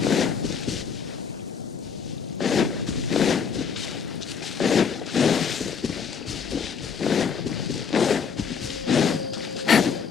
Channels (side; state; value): right; quieter; 6.5 dB